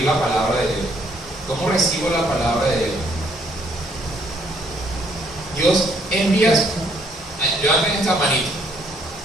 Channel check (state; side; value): normal; both; correlation 0.67